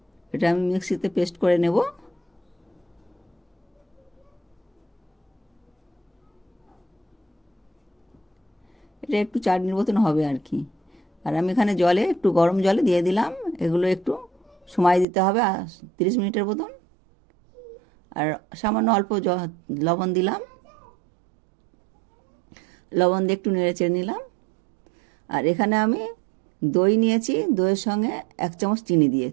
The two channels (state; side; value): drops out; left; at 15.1 s